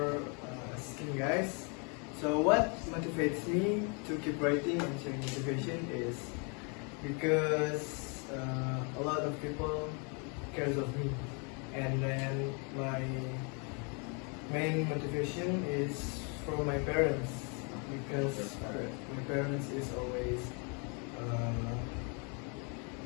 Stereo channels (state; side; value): quieter; right; 35.4 dB